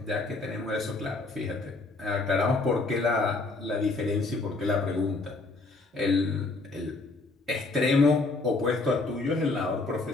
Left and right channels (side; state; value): right; quieter; 3.4 dB